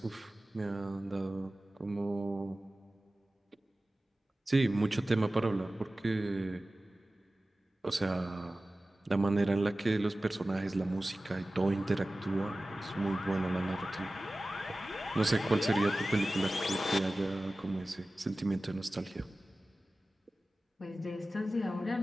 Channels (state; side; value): normal; both; correlation 0.96